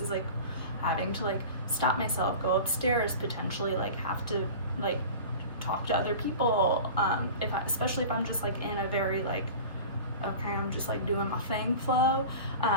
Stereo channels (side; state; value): both; inverted; correlation -0.36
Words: like having to like stop myself, go upstairs, potentially like have to like talk to other people, especially if I'm just like in a very like, okay, I'm just like doing my thing flow.